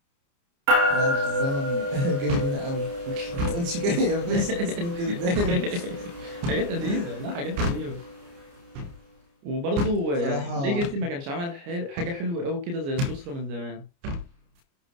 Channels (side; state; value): left; late; 29 ms